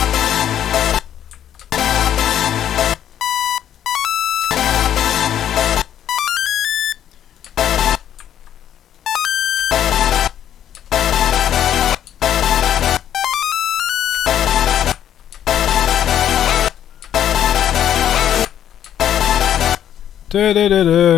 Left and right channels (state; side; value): quieter; right; 10.5 dB